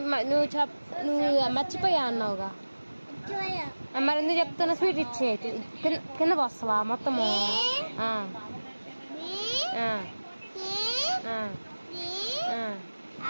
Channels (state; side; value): inverted; both; correlation -1.00